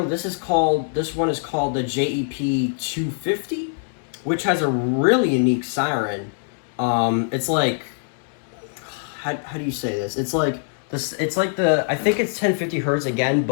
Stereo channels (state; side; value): silent; right; 63 dB below the other